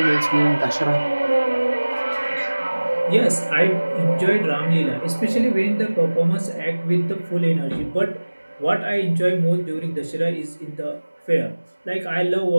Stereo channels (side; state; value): both; inverted; correlation -1.00